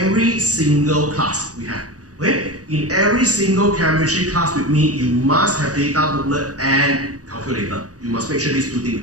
single class we have. Okay? In every single chemistry class with me, you must have data booklet and calculator. You must make sure these two things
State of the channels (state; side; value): late; left; 0.67 ms